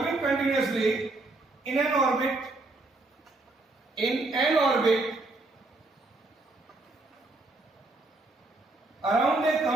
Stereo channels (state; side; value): quieter; left; 3.1 dB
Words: continuously in an orbit around a